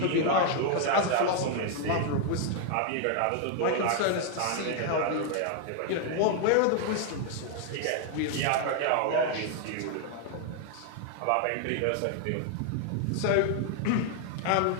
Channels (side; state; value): both; different; correlation 0.00